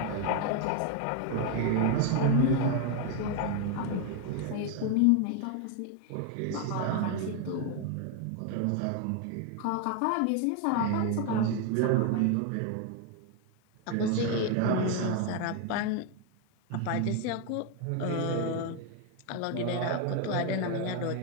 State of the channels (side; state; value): both; different; correlation 0.01